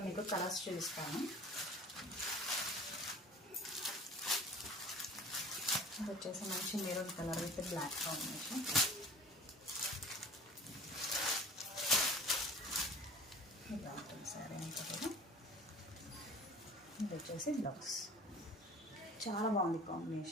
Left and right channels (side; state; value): both; normal; correlation 0.44